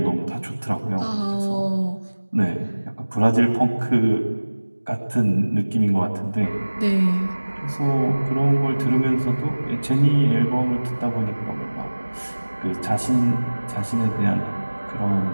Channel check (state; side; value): inverted; both; correlation -1.00